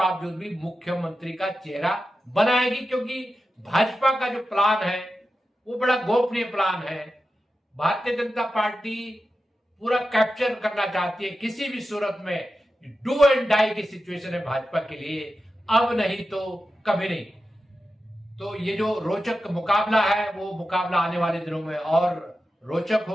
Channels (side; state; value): both; normal; correlation 0.92